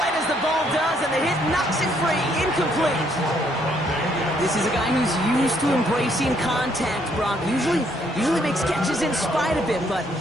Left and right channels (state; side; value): normal; both; correlation 0.69